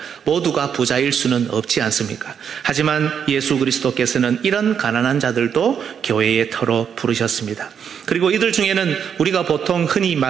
모두가 부자일 수는 없지 않습니까? 하지만 예수 그리스도께서는 이런 가난한 자들도 교회의 터로 부르셨습니다. 그리고 이들 중에는 우리가 보통 흔히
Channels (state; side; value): quieter; left; 7.6 dB